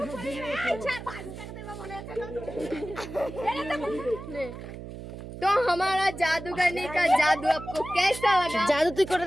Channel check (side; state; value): right; noise; hum, 11 dB below the sound